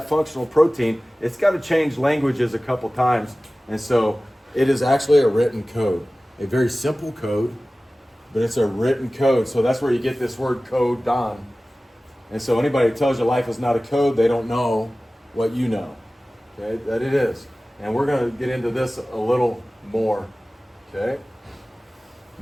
functional protein, it's got to change languages a couple times. And so it is actually a written code. A very simple code, but it's a written code. So that's where you get this word codon. And so anybody who tells you life is not a code, they don't know what you know. Okay, that it is. And we're going to get into this a little more. Okay.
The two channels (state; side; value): normal; both; correlation 0.97